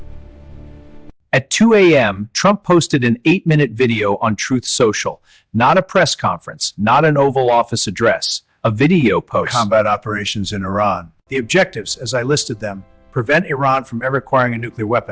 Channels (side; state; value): both; identical; correlation 1.00